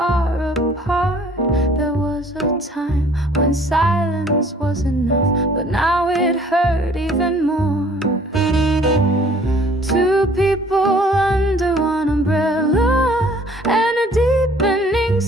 apart. There was a time when silence was enough, but now it hurt even more. Two people under one umbrella, and a deepening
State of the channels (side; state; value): both; normal; correlation 0.55